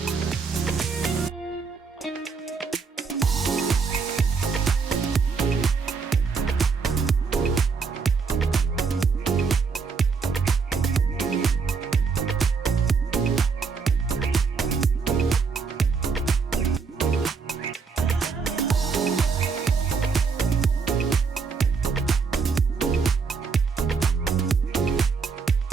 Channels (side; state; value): left; quieter; 5.1 dB